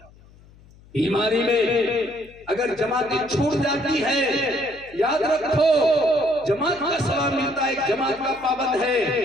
بیماری میں اگر جماعتیں چھوٹ جاتی ہے، یاد رکھو جماعت کا ثواب ملتا ہے، جماعت کا پابند ہے،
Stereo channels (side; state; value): left; noise; hum, 25 dB below the sound